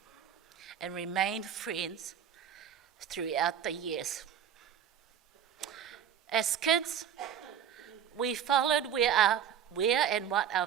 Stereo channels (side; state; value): left; quieter; 8.8 dB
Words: and remained friends throughout the years. As kids, we followed where and what our